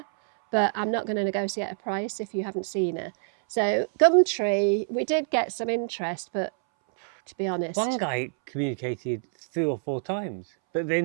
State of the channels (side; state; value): left; silent; 61 dB below the other